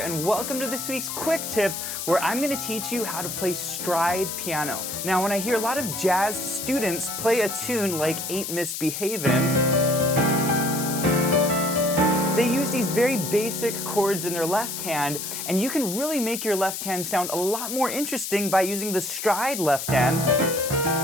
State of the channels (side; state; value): left; noise; hiss, 5 dB below the sound